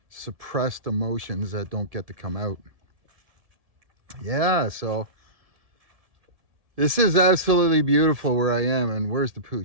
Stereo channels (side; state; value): left; late; 1.7 ms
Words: suppressed emotions that don't get to come out. Yeah, so this is absolutely beautiful where I am. And where's the